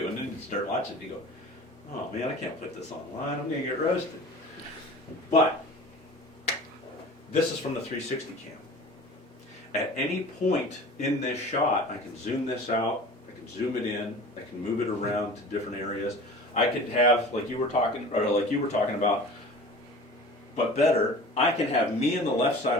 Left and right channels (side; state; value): both; normal; correlation 0.40